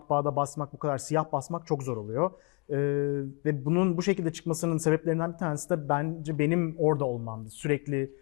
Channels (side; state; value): right; quieter; 31.8 dB